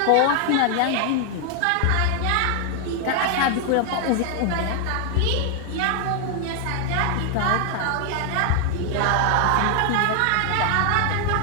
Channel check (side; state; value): both; different; correlation 0.00